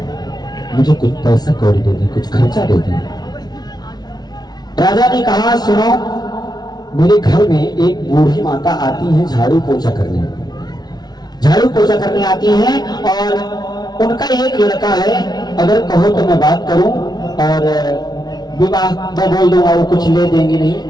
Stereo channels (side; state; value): right; late; 0.19 ms